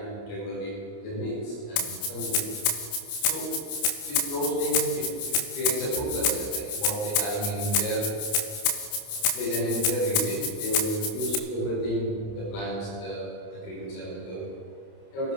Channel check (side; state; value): right; late; 29 ms